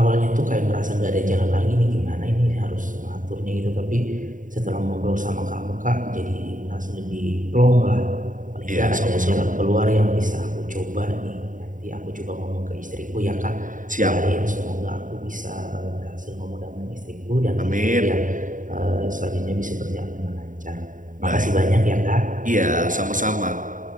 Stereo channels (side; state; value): left; late; 0.38 ms